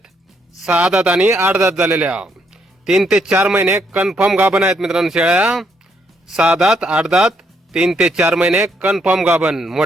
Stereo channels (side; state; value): both; normal; correlation 0.73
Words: 6 दात आणि 8 दात झालेल्या. 3 ते 4 महिने कन्फर्म गाभण आहेत मित्रांनो शेळ्या. 6 दात 8 दात 3 ते 4 महिने कन्फर्म गाभण